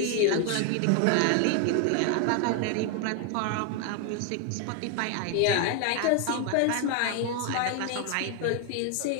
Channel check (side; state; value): both; different; correlation 0.00